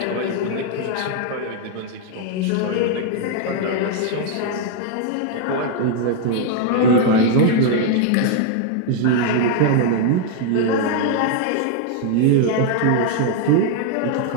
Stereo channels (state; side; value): different; both; correlation 0.00